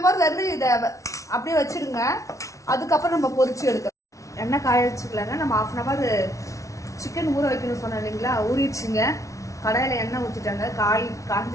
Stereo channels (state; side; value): late; right; 0.15 ms